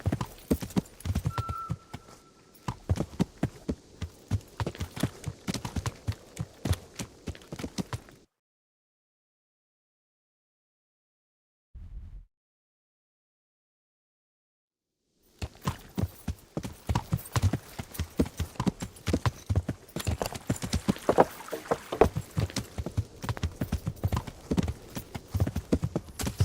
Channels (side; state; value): both; identical; correlation 1.00